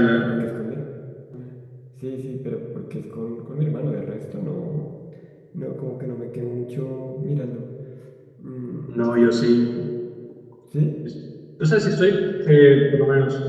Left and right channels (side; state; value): both; identical; correlation 1.00